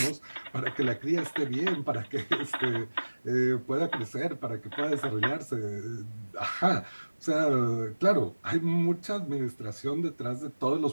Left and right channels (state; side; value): inverted; both; correlation -1.00